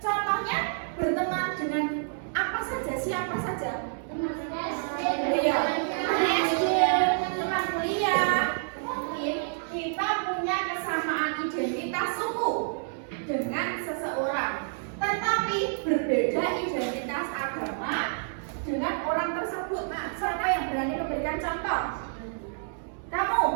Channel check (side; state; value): left; silent; digital silence